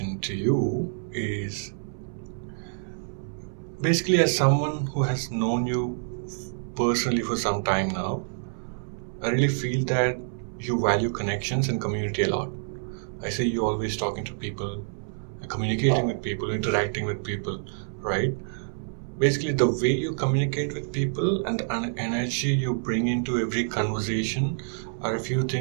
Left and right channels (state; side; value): silent; left; 60 dB below the other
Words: to you is basically, as someone who has known you personally for some time now, I really feel that you value connections and community a lot. I see you always talking to people, communicating with people, interacting with people, right? Basically, the way you communicate with people and the energy you bring into every conversation are a few